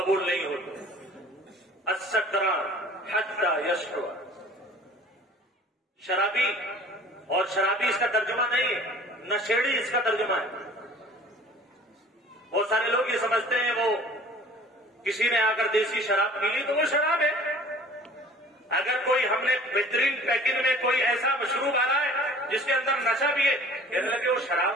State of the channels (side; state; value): both; normal; correlation 0.48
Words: نہیں ہوتے۔ السکران حتی یشرب، شرابی، اور شرابی اس کا ترجمہ نہیں ہے، نشیڑی اس کا ترجمہ ہے۔ بہت سارے لوگ یہ سمجھتے ہیں وہ کسی نے آ کر دیسی شراب پی لی تو وہ شراب ہے۔ اگر کوئی ہم نے بہترین پیکنگ میں کوئی ایسا مشروب آ رہا ہے جس کے اندر نشہ بھی ہے، کہنے لگے وہ